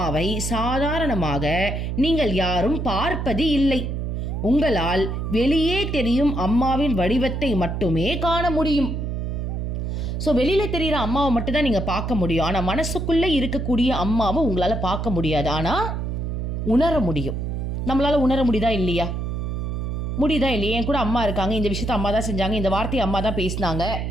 சாதாரணமாக நீங்கள் யாரும் பார்ப்பது இல்லை. உங்களால் வெளியே தெரியும் அம்மாவின் வடிவத்தை மட்டுமே காண முடியும். ஸோ வெளியில் தெரிகிற அம்மாவை மட்டும்தான் நீங்கள் பார்க்க முடியும். ஆனால் மனசுக்குள்ளே இருக்கக்கூடிய அம்மாவை உங்களால் பார்க்க முடியாது, ஆனால் உணர முடியும். நம்மளால் உணர முடியுதா இல்லையா? முடியுதா இல்லையா? என் கூட அம்மா இருக்காங்க, இந்த விஷயத்த அம்மா தான் செஞ்சாங்க, இந்த வார்த்தையை அம்மா தான் பேசினாங்க.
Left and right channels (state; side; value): noise; right; hum, 3 dB below the sound